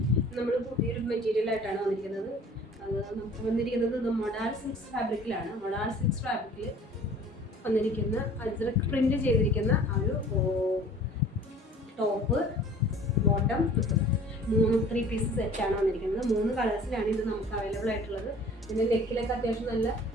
നമ്മൾ പുതിയൊരു മെറ്റീരിയലായിട്ടാണ് വന്നിരിക്കുന്നത്. അത് നമുക്ക് വന്നിരിക്കുന്നത് മൊഡാൾ സിൽക്സ് ഫാബ്രിക്കിലാണ്. മൊഡാൾ സിൽക്സ് ഫാബ്രിക്കിൽ വന്നിരിക്കുന്ന അജ്രക് പ്രിന്റ് ചെയ്തിരിക്കുന്ന ആ ഒരു ടോപ്പ്, ബോട്ടം, 3 പീസ് സെറ്റാണ് വന്നിരിക്കുന്നത്. 3 കളേഴ്സിലാണ് ഇത് നമുക്ക് അവൈലബിൾ ആയിട്ടുള്ളത്. ഇതിൻ്റെ നെക്കിലൊക്കെ അത്യാവശ്യം നല്ല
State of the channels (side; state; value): both; normal; correlation 0.49